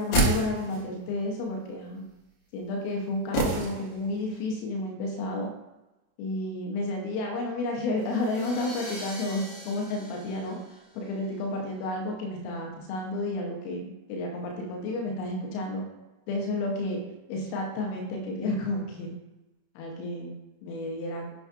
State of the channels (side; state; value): right; late; 32 ms